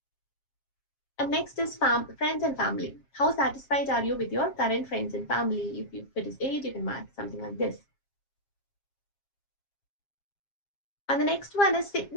And next is friends and family. How satisfied are you with your current friends and family? If it is 8, you can mark something like this. And the next one is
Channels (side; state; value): right; late; 7.4 ms